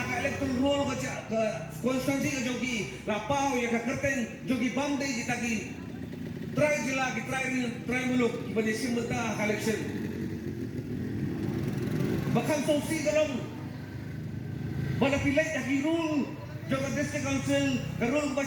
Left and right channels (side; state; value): both; identical; correlation 1.00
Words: electoral roll ka konstansi ka jogi lapaw ya ka kerten jogi bamde kitagi. Try jila ki try muluk ibani simulta election. Bakang sausi galong malapilay aki rule jong district council karul